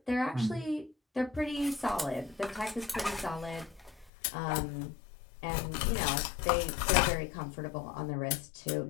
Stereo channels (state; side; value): drops out; right; at 4.1 s